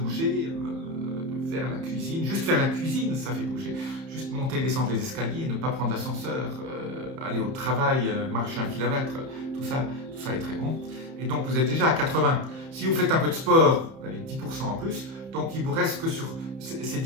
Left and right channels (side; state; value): left; late; 31 ms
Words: de faire la cuisine, juste faire la cuisine, ça fait bouger. Juste monter et descendre les escaliers, ne pas prendre l'ascenseur, aller au travail, marcher 1 kilomètre, tout ça est très bon. Et donc vous êtes déjà à 80. Si vous faites un peu de sport, vous avez 10% en plus. Donc il vous reste que sur ces